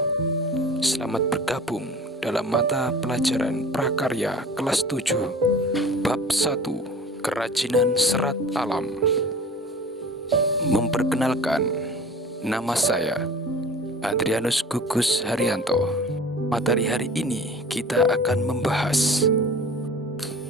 Selamat bergabung dalam mata pelajaran prakarya kelas 7 Bab 1 Kerajinan Serat Alam. Memperkenalkan, nama saya Adrianus Gugus Haryanto. Materi hari ini kita akan membahas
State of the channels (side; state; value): both; normal; correlation 0.41